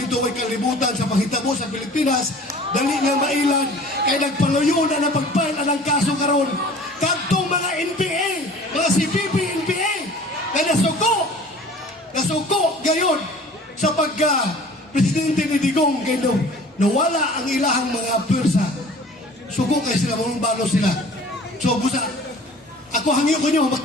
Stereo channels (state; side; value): normal; both; correlation 0.46